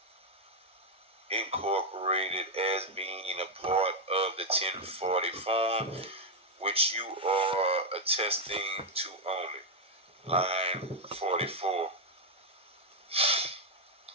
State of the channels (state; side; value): normal; both; correlation 0.01